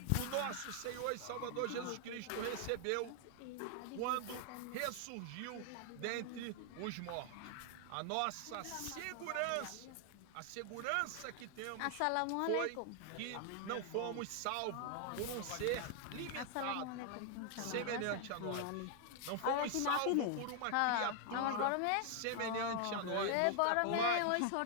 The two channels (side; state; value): both; different; correlation 0.00